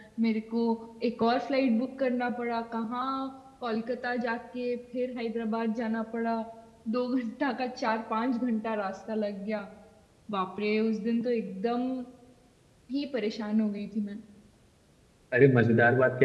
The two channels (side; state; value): both; identical; correlation 1.00